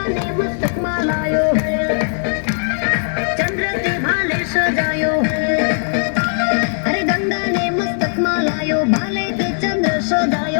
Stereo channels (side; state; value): right; silent; digital silence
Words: મસ્તકમાં લાયો, ચંદ્રથી ભાલે સજાયો. અરે ગંગાને મસ્તકમાં લાયો, ભાલે કે ચંદ્ર